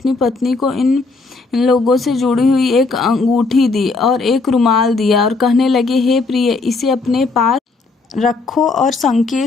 पत्नी को इन लोगों से जुड़ी हुई एक अंगूठी दी और एक रुमाल दिया और कहने लगे, हे प्रिय, इसे अपने पास रखो और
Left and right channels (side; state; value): right; quieter; 3.9 dB